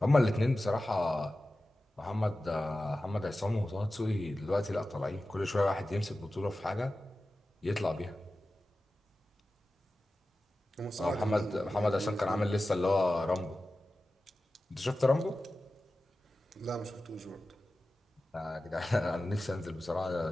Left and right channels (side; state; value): both; normal; correlation 0.94